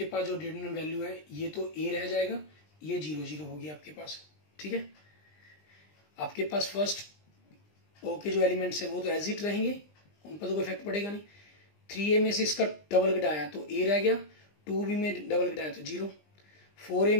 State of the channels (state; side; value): late; right; 20 ms